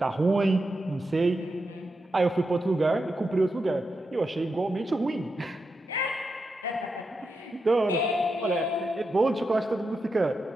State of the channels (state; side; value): normal; both; correlation 0.87